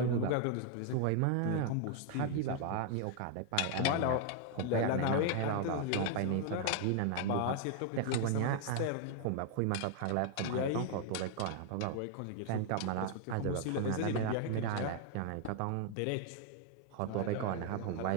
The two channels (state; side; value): different; both; correlation 0.00